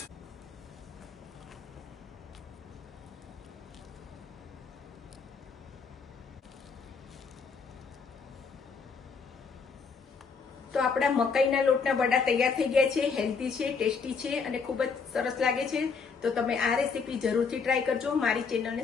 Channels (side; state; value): right; quieter; 5.3 dB